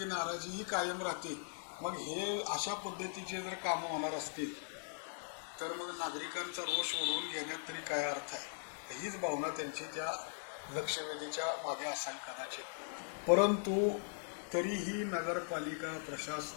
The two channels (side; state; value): right; silent; 51 dB below the other